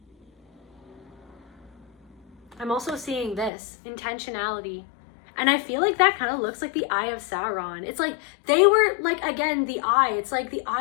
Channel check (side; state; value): right; drops out; at 3.5 s